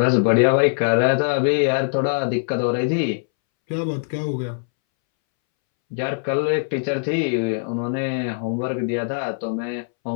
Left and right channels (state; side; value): silent; right; 64 dB below the other